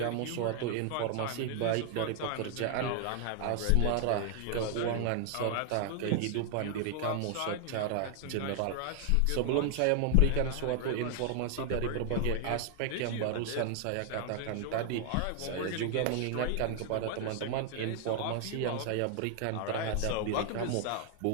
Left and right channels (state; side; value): different; both; correlation 0.00